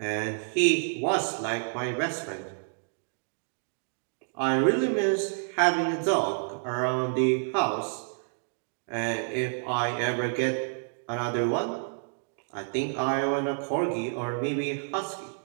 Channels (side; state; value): left; silent; digital silence